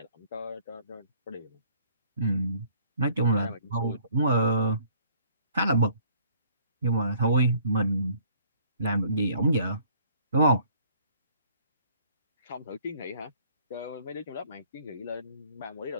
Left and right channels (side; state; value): both; inverted; correlation -0.59